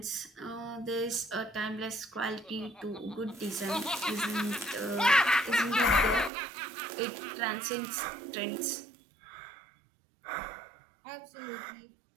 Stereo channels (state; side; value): drops out; left; at 6.3 s